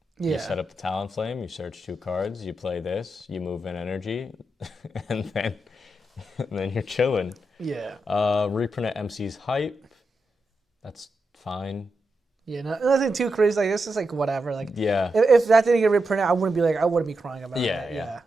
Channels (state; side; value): normal; both; correlation 0.87